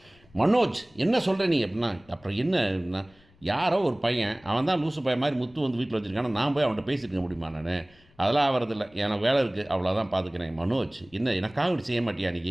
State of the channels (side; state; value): left; noise; rumble, 29 dB below the sound